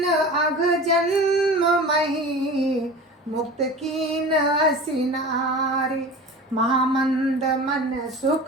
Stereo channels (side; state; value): both; normal; correlation 0.35